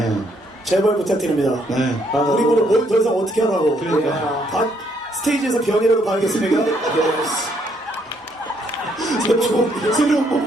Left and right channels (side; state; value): both; normal; correlation 0.70